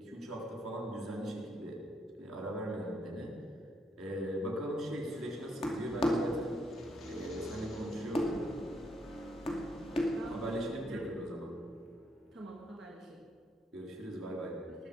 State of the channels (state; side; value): normal; both; correlation 0.74